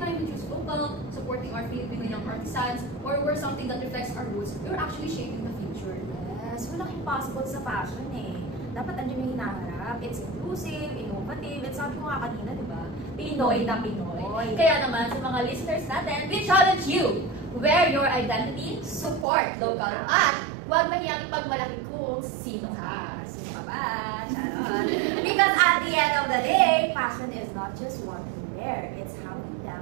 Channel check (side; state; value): left; drops out; at 19.2 s